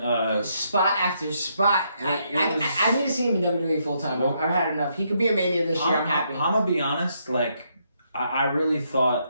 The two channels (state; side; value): inverted; both; correlation -0.76